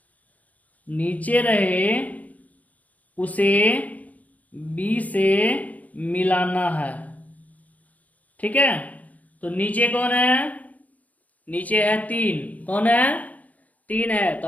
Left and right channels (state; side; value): late; right; 0.075 ms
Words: नीचे रहे उसे B से मिलाना है। ठीक है, तो नीचे कौन है, नीचे है 3, कौन है 3 है, तो